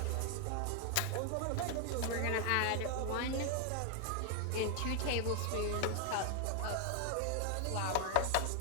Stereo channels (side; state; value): both; different; correlation 0.00